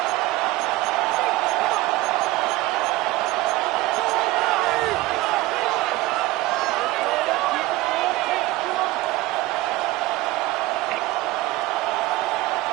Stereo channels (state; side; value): quieter; left; 18.5 dB